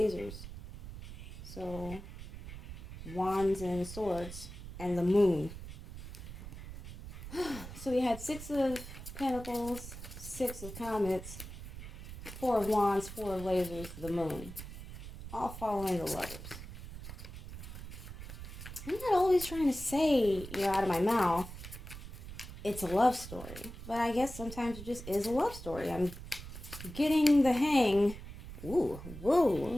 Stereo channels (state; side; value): noise; right; rumble, 11 dB below the sound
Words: So, wands and swords and the moon. So we had 6 of Pentacles, 6 of Comets, Four of Wands, Four of Lasers, the Moon. All following the lovers. I'm not always trying to say, out of my mouth, it's a love story. But I guess sometimes it just is a love story. I'm getting the hang. Ooh,